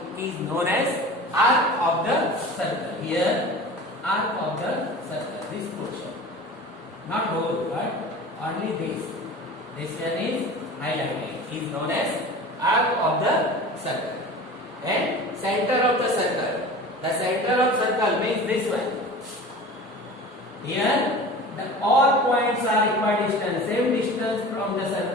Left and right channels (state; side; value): normal; both; correlation 0.37